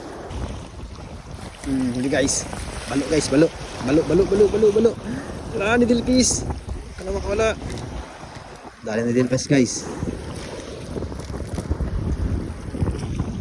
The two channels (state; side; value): identical; both; correlation 1.00